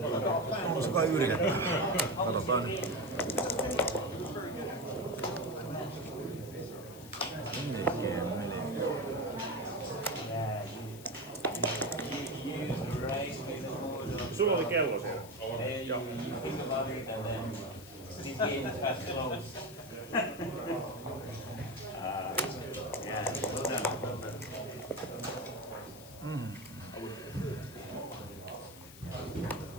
On se kai yritetään. Katsotaan nyt. Melkein. Sulla oli kello siellä. Joo. These games are close. Yeah, well done.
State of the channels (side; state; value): left; noise; hiss, 17 dB below the sound